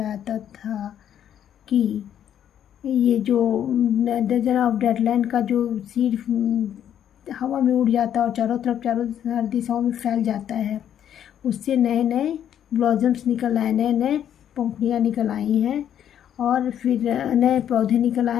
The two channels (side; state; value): right; quieter; 9.9 dB